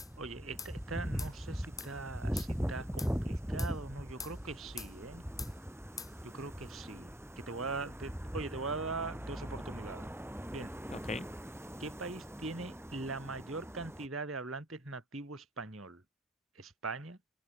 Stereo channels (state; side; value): normal; both; correlation 0.57